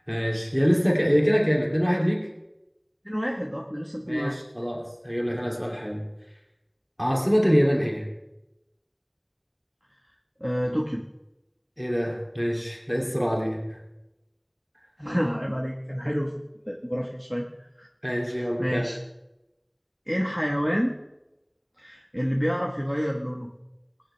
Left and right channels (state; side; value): identical; both; correlation 1.00